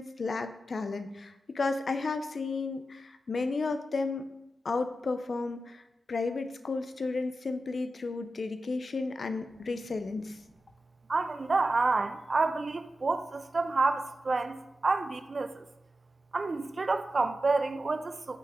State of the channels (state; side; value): normal; both; correlation 0.91